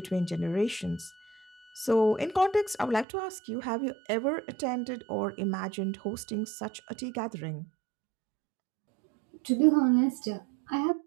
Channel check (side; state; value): left; drops out; at 3.1 s